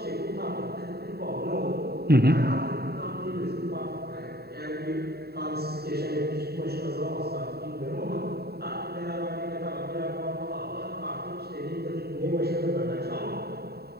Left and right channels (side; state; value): left; late; 0.46 ms